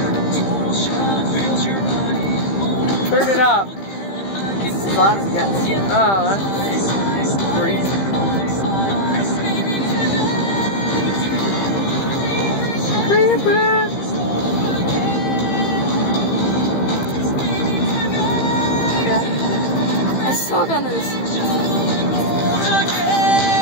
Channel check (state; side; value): late; right; 15 ms